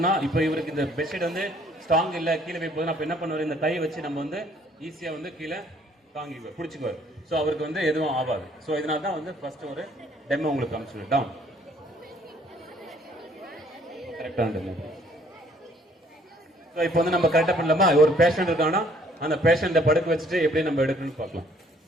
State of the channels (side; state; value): both; normal; correlation 0.61